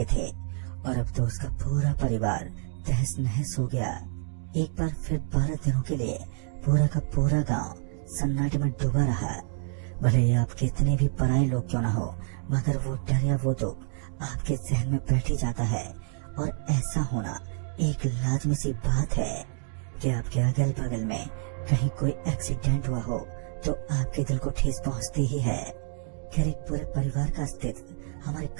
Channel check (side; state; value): left; silent; digital silence